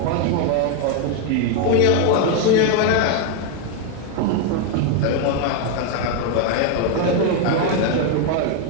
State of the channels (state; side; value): different; both; correlation 0.01